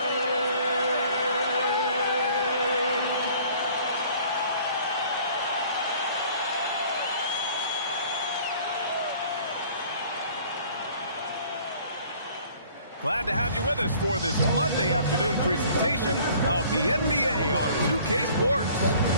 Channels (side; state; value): both; inverted; correlation -0.53